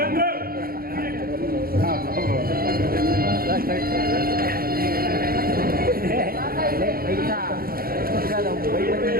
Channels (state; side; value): late; left; 0.43 ms